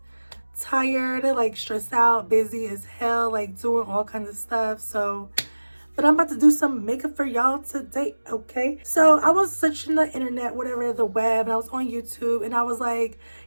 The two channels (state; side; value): inverted; both; correlation -1.00